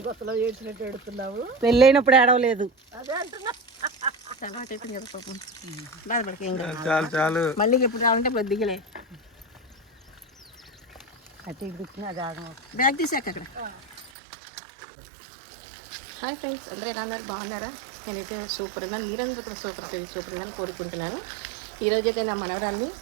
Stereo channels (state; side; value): drops out; left; at 14.1 s